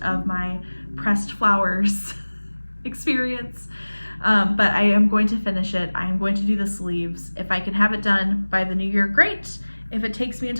of my pressed flowers experience. But I am going to finish it. I am going to do the sleeves. If I can have it done by the new year, great. If it takes me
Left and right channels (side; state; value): both; inverted; correlation -1.00